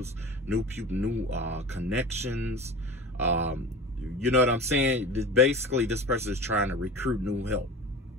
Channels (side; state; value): both; normal; correlation 0.35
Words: new connections. You know what I'm saying? Basically, this person is trying to recruit new help.